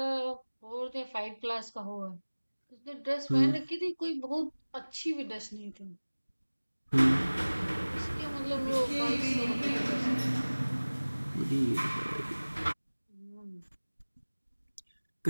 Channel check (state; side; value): inverted; both; correlation -1.00